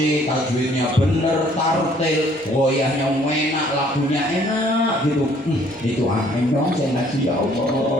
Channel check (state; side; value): normal; both; correlation 0.61